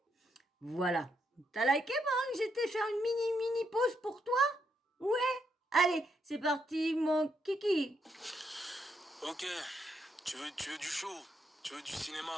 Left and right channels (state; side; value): normal; both; correlation 0.78